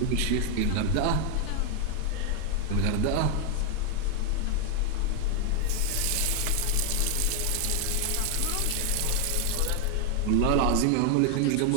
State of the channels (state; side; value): different; both; correlation 0.00